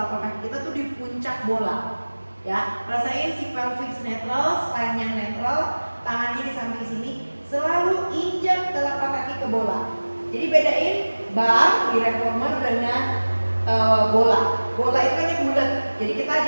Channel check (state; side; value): inverted; both; correlation -1.00